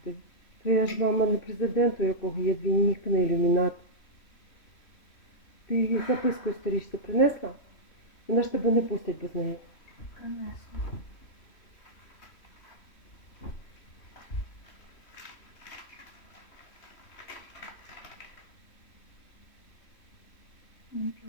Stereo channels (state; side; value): late; right; 3.0 ms